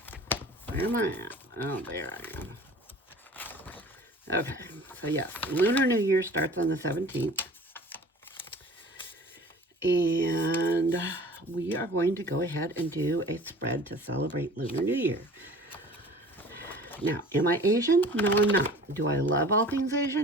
Where am I at? Oh, there I am. Okay, so yes, Lunar New Year starts on the 17th. And we are going to go ahead and do a spread to celebrate Lunar New Year. Now, am I Asian? No, I'm not. Do I love all things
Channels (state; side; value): normal; both; correlation 0.44